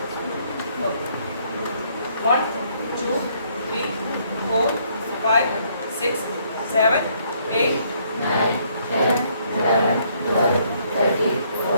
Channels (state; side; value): inverted; both; correlation -0.68